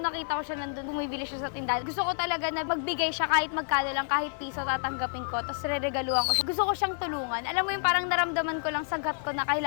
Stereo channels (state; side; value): silent; right; 57 dB below the other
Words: nakita ko siya nandun, bumibili siya sa tindahan. Gusto ko talaga na magbigay siya kahit magkano lang, kahit piso tatanggapin ko. Tapos re-regaluhan ko siya. Gusto ko siyang tulungan. Alam mo yung parang naramdaman ko lang sa gut ko na